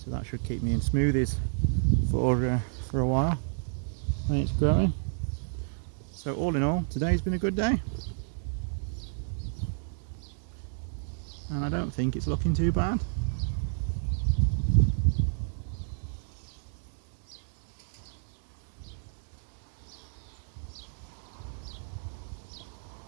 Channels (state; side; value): silent; left; digital silence